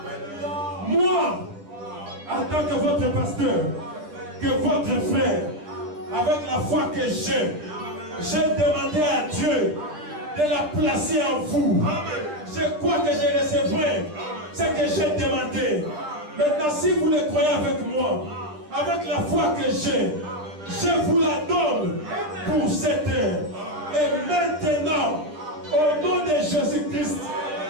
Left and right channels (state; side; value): late; left; 10 ms